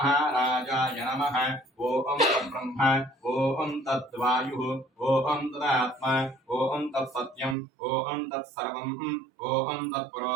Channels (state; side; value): drops out; left; at 7.6 s